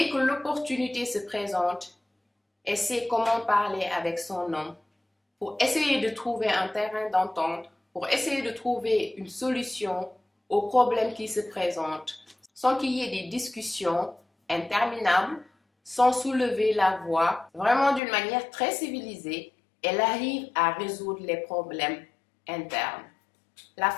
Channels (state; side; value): drops out; right; at 18.0 s